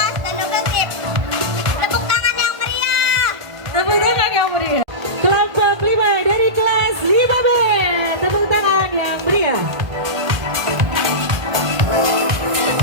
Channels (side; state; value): left; late; 1.5 ms